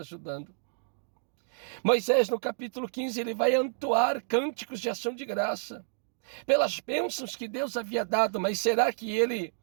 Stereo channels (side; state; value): left; silent; digital silence